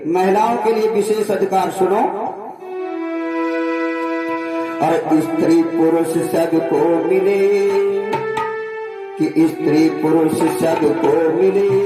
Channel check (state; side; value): identical; both; correlation 1.00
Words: महिलाओं के लिए विशेष अधिकार सुनो, और स्त्री पुरुष सबको मिले, कि स्त्री पुरुष सबको मिले,